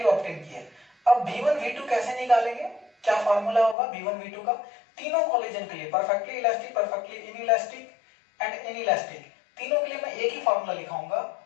ऑब्टेन की है। अब v1 v2 कैसे निकालेंगे, क्या फार्मूला होगा v1 v2 का, तीनों कॉलिजन के लिए, perfectly elastic, perfectly inelastic and inelastic, तीनों के लिए मैं एक ही फार्मूला लिखाऊंगा,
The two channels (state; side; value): drops out; right; at 3.8 s